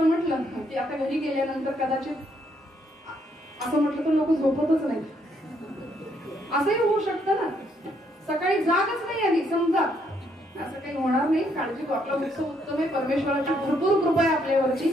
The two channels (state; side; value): normal; both; correlation 0.72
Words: म्हटलं की आता घरी गेल्यानंतर कदाचित असं म्हटलं तर लोक झोपतच नाही, असंही होऊ शकतं ना. सकाळी जागच नाही आली समजा, असं काही होणार नाही. काळजी करू, आपला उत्सव उत्तम आहे, परमेश्वराची भरपूर कृपा आहे आपल्यावरची,